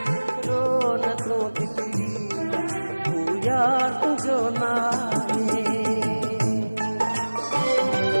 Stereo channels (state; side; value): inverted; both; correlation -1.00